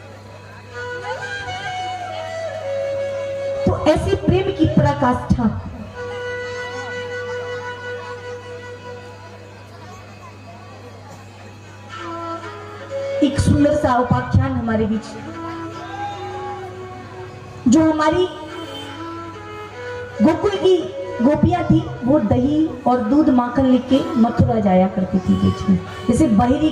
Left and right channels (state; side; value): identical; both; correlation 1.00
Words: तो ऐसे प्रेम की पराकाष्ठा एक सुंदर सा उपाख्यान हमारे बीच, जो हमारी गोकुल की गोपियां थी, वो दही और दूध माखन लेके मथुरा जाया करती थी बीच में। जैसे बाहरी